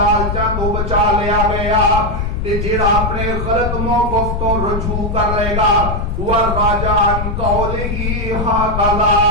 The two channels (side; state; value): left; noise; rumble, 3 dB below the sound